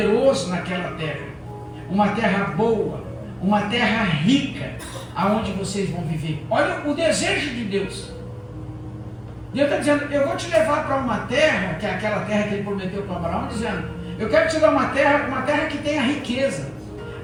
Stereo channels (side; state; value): both; identical; correlation 1.00